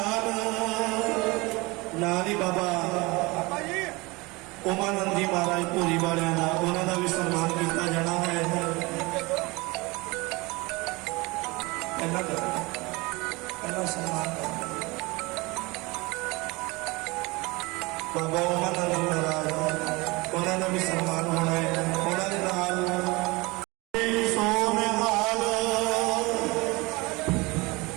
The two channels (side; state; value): left; quieter; 24.2 dB